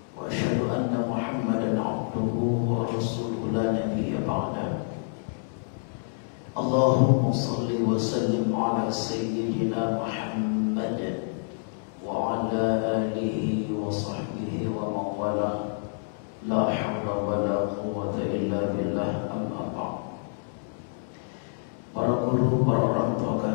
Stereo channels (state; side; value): silent; right; digital silence